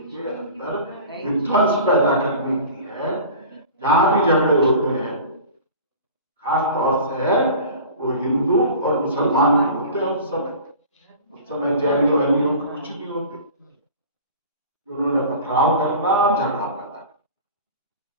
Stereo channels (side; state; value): both; inverted; correlation -0.40